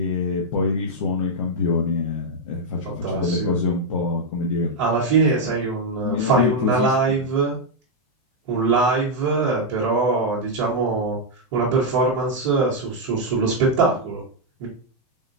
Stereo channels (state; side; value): normal; both; correlation -0.02